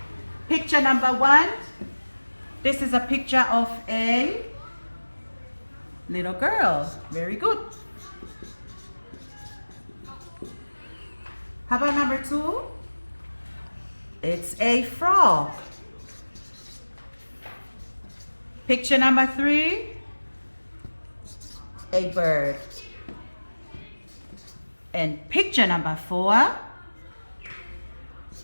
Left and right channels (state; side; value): inverted; both; correlation -1.00